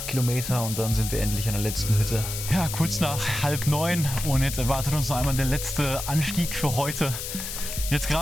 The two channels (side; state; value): left; noise; hiss, 6 dB below the sound